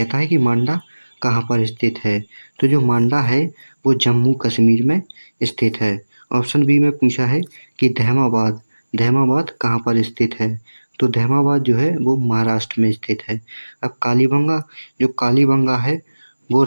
है कि मांडा कहाँ पर स्थित है। तो जो मांडा है वो जम्मू कश्मीर में स्थित है। ऑप्शन बी में पूछा है कि दहमाबाद कहाँ पर स्थित है। तो दहमाबाद जो है वो महाराष्ट्र में स्थित है। अब कालीबंगा है वो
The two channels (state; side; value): inverted; both; correlation -1.00